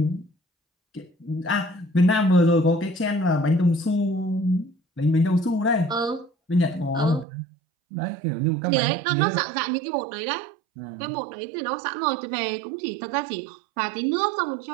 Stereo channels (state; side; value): drops out; left; at 7.2 s